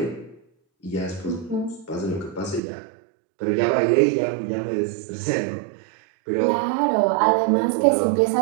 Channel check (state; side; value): drops out; left; at 2.6 s